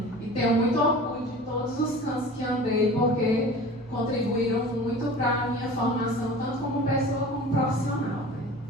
e tenho muito orgulho de todos os cantos que andei, porque contribuíram muito para a minha formação, tanto como pessoa como profissional, né?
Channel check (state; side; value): normal; both; correlation 0.39